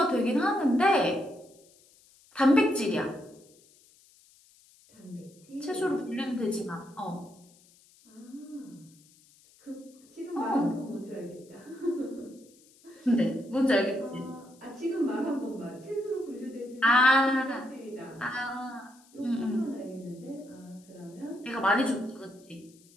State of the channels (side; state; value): left; noise; hiss, 28 dB below the sound